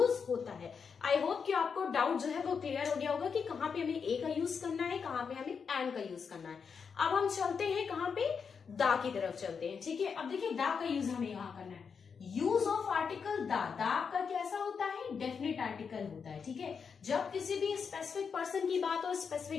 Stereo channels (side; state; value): right; quieter; 6.1 dB